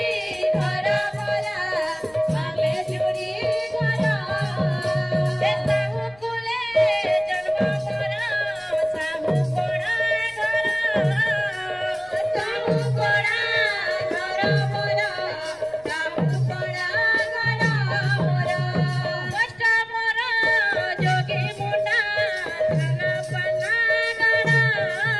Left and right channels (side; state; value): left; noise; rumble, 27 dB below the sound